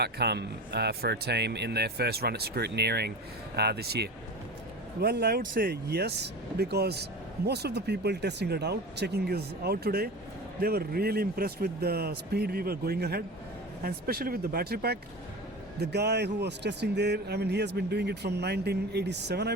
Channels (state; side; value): normal; both; correlation 0.31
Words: for a team in their first run at scrutineering this year. Well, I would say yes, because most of the people testing it out, checking is out today, they were really impressed with the speed we were going ahead, and especially with the battery pack. The guy who was testing there, he has been doing it from 1987, I